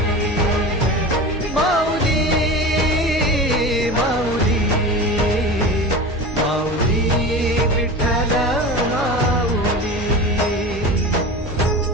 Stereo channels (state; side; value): normal; both; correlation 0.30